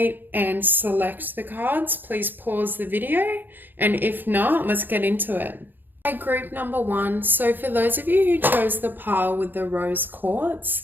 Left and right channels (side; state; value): left; late; 0.091 ms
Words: and select the cards, please pause the video. And if not, let's get into it. Okay, group number 1. So for those of you who chose the pile with the rose